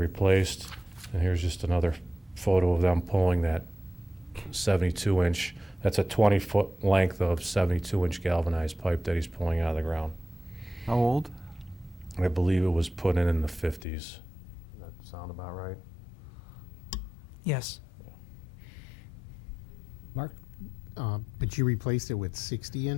And here's just another photo of them pulling that 72-inch. That's a 20-foot length of 72-inch galvanized pipe that he's pulling out of the ground. How old? I believe it was put in the 50s. Does that sound about right? Yes. Mark? But you replaced it with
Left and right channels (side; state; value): right; drops out; at 13.9 s